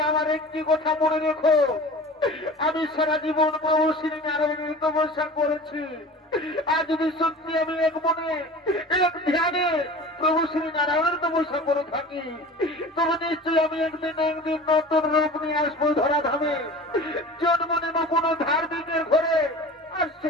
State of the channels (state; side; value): normal; both; correlation 0.38